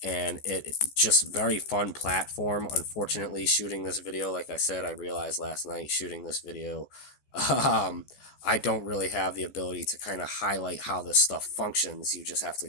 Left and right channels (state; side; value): late; right; 14 ms